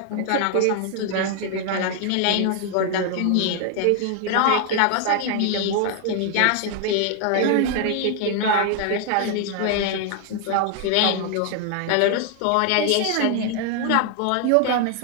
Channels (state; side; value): different; both; correlation 0.00